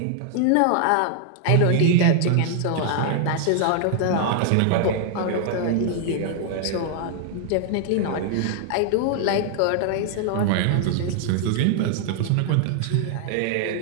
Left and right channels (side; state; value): both; different; correlation 0.00